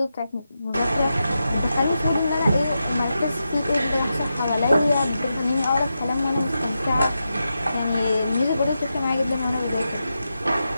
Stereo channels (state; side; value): inverted; both; correlation -0.89